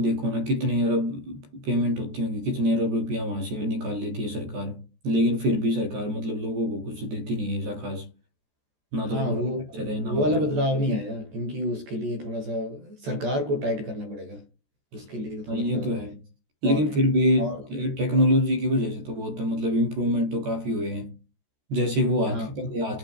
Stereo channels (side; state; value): left; late; 14 ms